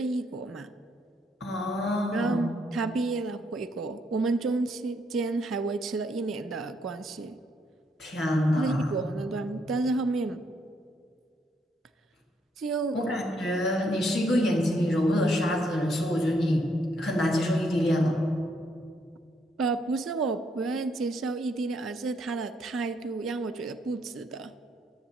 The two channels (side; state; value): both; normal; correlation 0.73